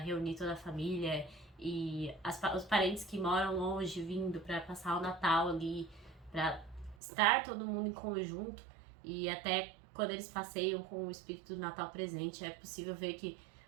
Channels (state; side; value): drops out; left; at 7.0 s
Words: toda a família e os parentes que moram longe vindo para passar o Natal ali, para estar todo mundo em conjunto. E até quando eles passeiam com o espírito do Natal presente, é possível ver que